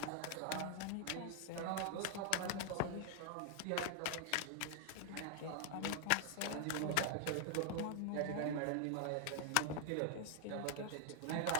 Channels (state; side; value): different; both; correlation 0.00